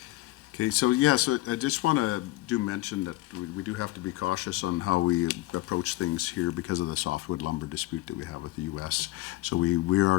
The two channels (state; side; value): quieter; right; 18.3 dB